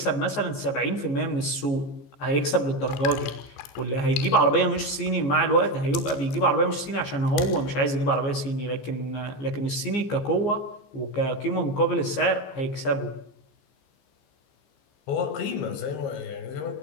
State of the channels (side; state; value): right; late; 14 ms